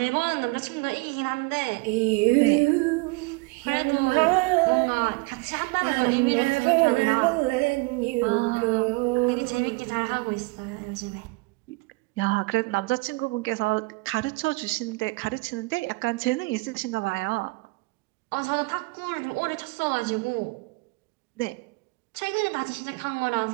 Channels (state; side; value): quieter; left; 26.5 dB